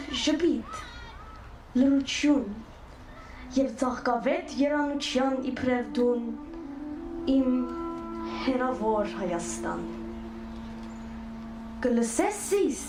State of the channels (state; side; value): identical; both; correlation 1.00